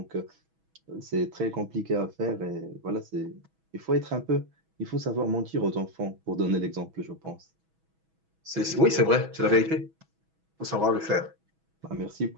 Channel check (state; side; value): late; left; 6.2 ms